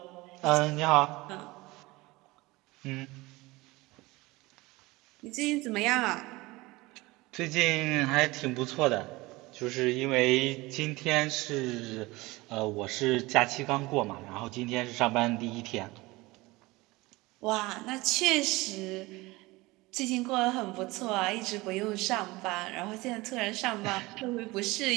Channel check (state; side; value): quieter; left; 21.5 dB